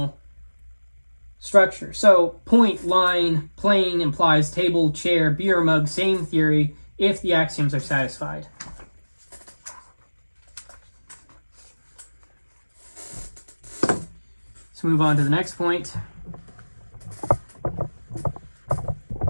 structure. So, point, line, plane implies table, chair, beer mug, same theory if the axioms are satisfied. Let's move on to the next point.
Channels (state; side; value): inverted; both; correlation -1.00